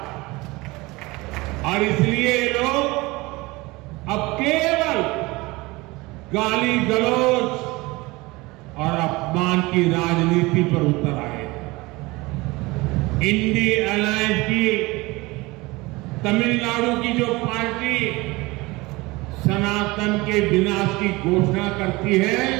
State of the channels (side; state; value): left; quieter; 22.4 dB